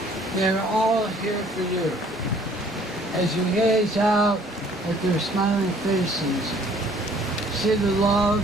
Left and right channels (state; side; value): normal; both; correlation 0.57